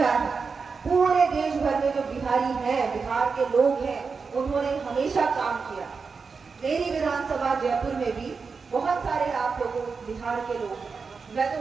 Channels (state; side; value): quieter; left; 5.0 dB